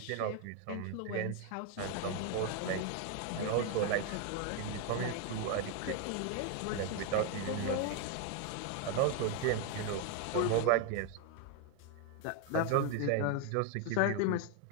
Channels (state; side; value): different; both; correlation 0.01